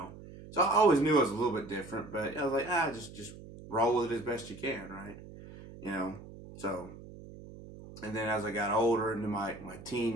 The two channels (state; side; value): noise; right; hum, 16 dB below the sound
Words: so I always knew I was a little bit different, but I was like, just roll with it as best you can, right? You know, so and then as I got older into my